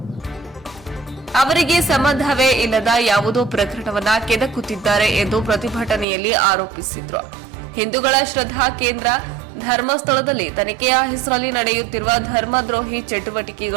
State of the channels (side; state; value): left; drops out; at 6.1 s